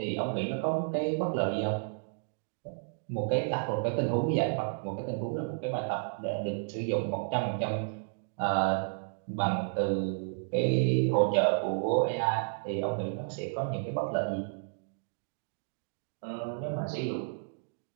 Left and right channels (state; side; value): silent; left; digital silence